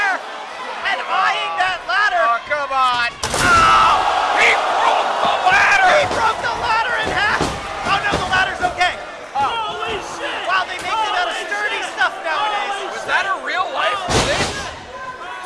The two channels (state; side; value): identical; both; correlation 1.00